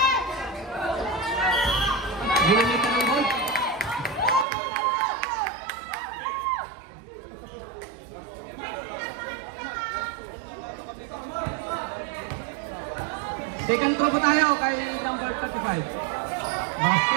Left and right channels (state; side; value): drops out; left; at 4.5 s